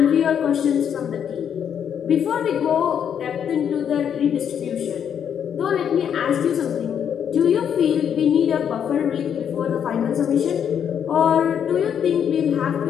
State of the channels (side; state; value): right; quieter; 8.4 dB